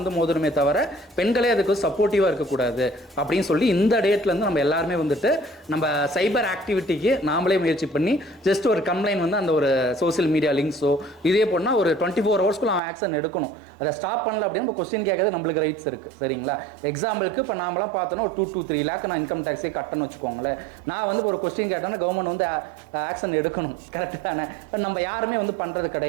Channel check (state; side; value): drops out; left; at 12.8 s